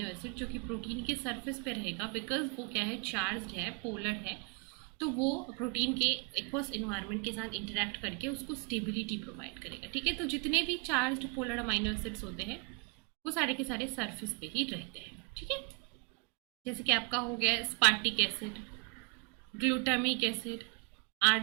acid जो कि प्रोटीन के सरफेस पे रहेगा, बिकॉज वो क्या है? चार्ज्ड है, पोलर है, तो वो प्रोटीन के एक्वस इन्वायरमेंट के साथ इंटरेक्ट करके उसको स्टेबिलिटी प्रोवाइड करेगा। ठीक है, तो जितने भी चार्ज्ड पोलर अमाइनो एसिड्स होते हैं वो सारे के सारे सरफेस पे ही रहते हैं। ठीक है, जैसे कि आपका हो गया स्पार्टिक acid, glutamic acid,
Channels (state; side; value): quieter; left; 28.5 dB